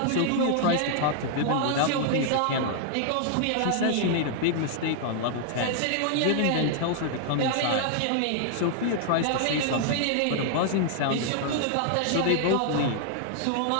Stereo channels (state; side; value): different; both; correlation 0.00